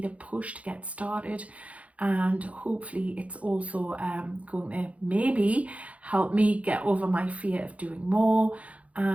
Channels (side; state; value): left; late; 0.065 ms